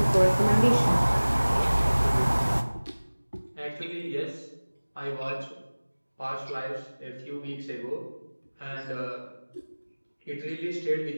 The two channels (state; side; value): inverted; both; correlation -1.00